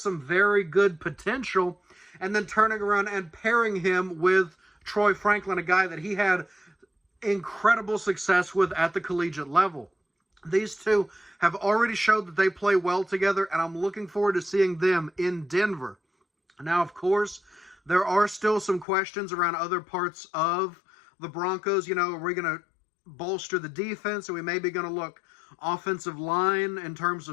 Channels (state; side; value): drops out; right; at 18.9 s